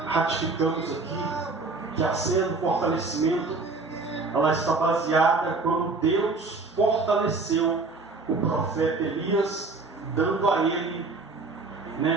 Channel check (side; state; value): left; quieter; 3.7 dB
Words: ratificamos aqui, que a cena do fortalecimento, ela está baseada quando Deus fortaleceu o profeta Elias, dando a ele,